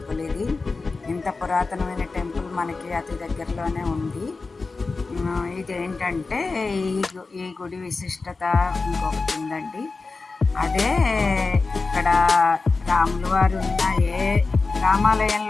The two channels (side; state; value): right; quieter; 4.0 dB